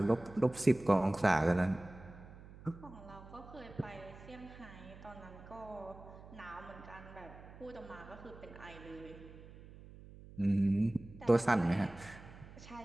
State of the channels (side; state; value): right; noise; hum, 17 dB below the sound